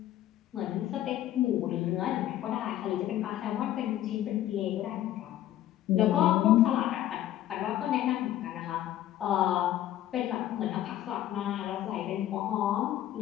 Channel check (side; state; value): right; quieter; 12.9 dB